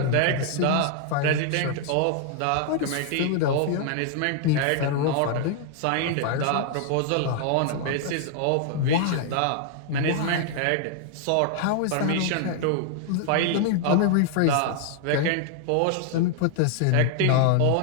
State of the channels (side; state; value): both; different; correlation 0.00